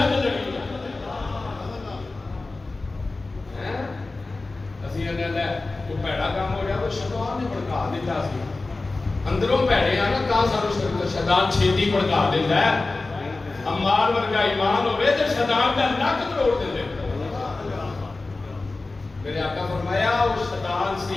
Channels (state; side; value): quieter; right; 3.4 dB